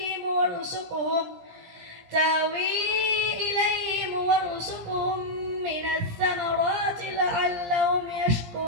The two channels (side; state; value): left; late; 17 ms